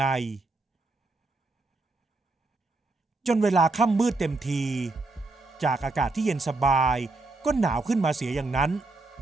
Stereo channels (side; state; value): left; quieter; 3.3 dB